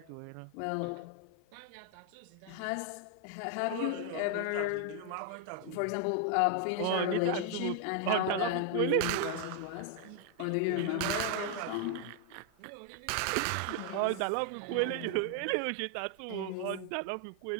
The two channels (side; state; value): both; different; correlation 0.00